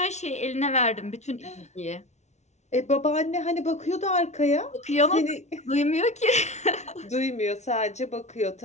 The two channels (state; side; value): late; right; 0.32 ms